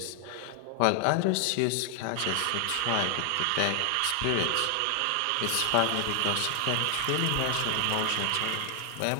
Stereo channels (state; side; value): different; both; correlation 0.00